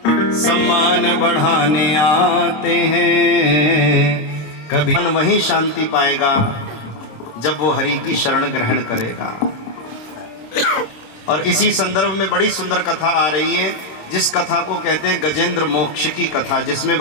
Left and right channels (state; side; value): late; right; 26 ms